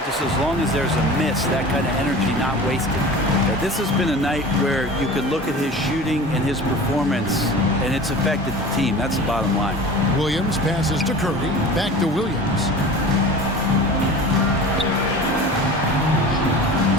just as long as there's a miss, that kind of energy not wasted. This has been a night where you could look at his shooting and his performance, and it's affected the team. That's the bottom line. Williams passes to Curry. Back to Williams.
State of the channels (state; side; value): normal; both; correlation 0.37